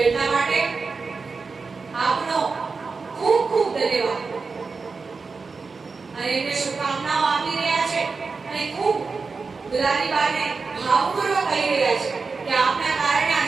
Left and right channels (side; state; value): left; quieter; 4.5 dB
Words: એટલા માટે આપનો ખૂબ ખૂબ ધન્યવાદ. અને એમને શુભકામનાઓ આપી રહ્યા છે અને ખૂબ દુલારી બાને ભાવપૂર્વક કહી રહ્યા છે કે આપના કારણે